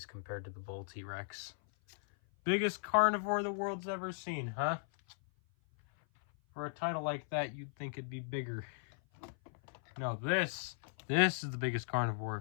compared to the bull T-Rex. Biggest carnivore the world's ever seen, huh? For a title like that, you'd think it'd be bigger. No, this is the biggest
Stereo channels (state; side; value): silent; right; 53 dB below the other